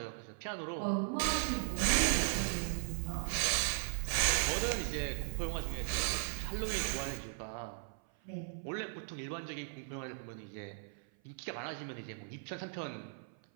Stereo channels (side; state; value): left; silent; 53 dB below the other